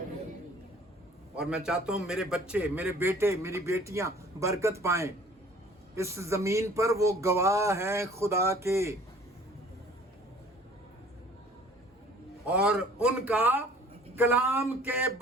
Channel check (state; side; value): normal; both; correlation 0.52